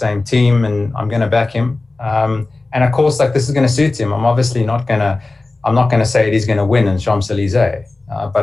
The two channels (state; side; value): quieter; right; 3.2 dB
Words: team, and I'm going to back him. And of course, like, this is going to suit him. I'm obviously not going to say Eddie's going to win in Champs-Élysées.